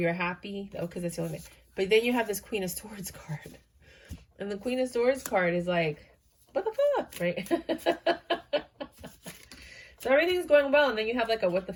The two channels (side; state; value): both; identical; correlation 1.00